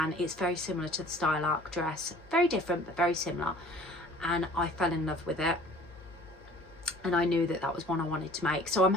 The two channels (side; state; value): both; normal; correlation 0.50